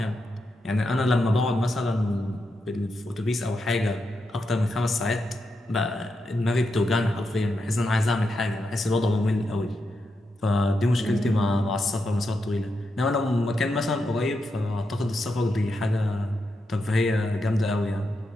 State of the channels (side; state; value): both; normal; correlation 0.85